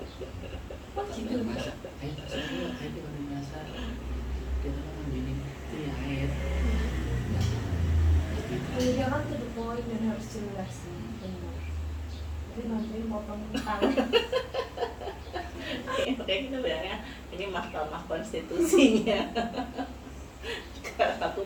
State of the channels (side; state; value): both; identical; correlation 1.00